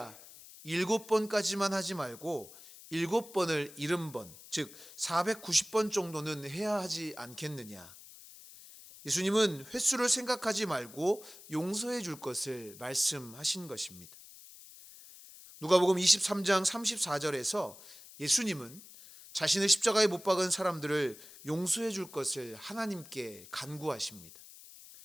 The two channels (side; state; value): left; noise; hiss, 18 dB below the sound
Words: 7번까지만 하지 말고 7번을 70번, 즉 490번 정도는 해야 하지 않겠느냐. 예수님은 횟수를 생각하지 말고 용서해 줄 것을 말씀하신 것입니다. 누가복음 23장 34절에서 예수님은 자신의 십자가에 못 박은 사람들을 용서해 줄 것을 하나님께 간구하십니다.